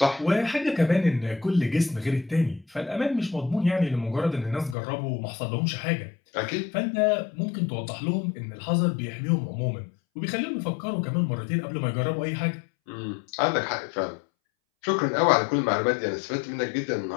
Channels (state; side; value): drops out; right; at 4.8 s